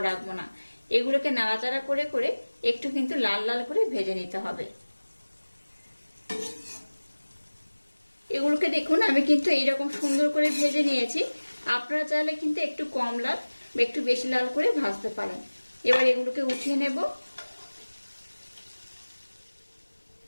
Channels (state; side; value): inverted; both; correlation -1.00